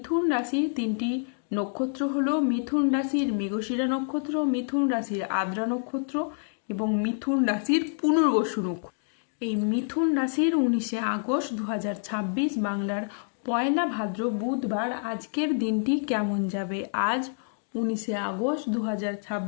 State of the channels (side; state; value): right; silent; digital silence